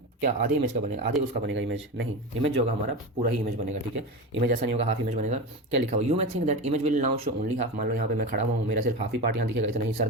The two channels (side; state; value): both; normal; correlation 0.23